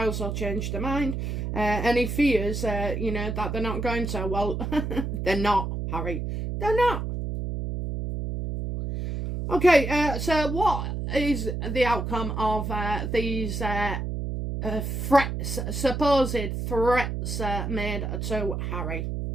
will change their mind. And he fears, you know, that they're not going to. Well, they're not, Harry. They're not. Okay, so what is the outcome of these threats, supposed threats made to Harry?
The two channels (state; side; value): noise; right; hum, 3 dB below the sound